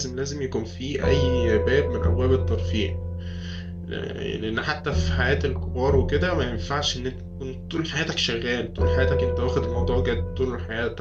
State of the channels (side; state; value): both; identical; correlation 1.00